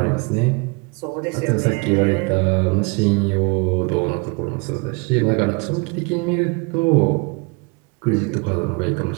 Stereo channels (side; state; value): left; quieter; 30.4 dB